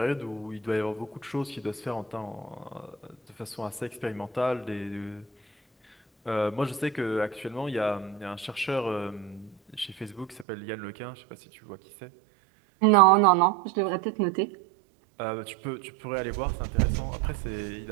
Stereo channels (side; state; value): left; drops out; at 10.5 s